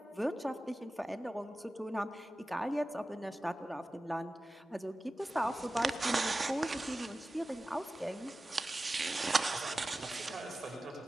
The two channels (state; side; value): normal; both; correlation 0.95